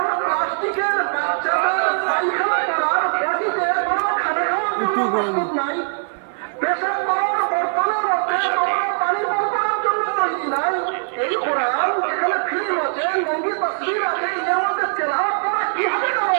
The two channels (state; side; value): silent; left; 59 dB below the other